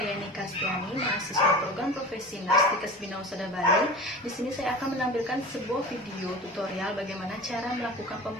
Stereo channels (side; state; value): both; normal; correlation 0.34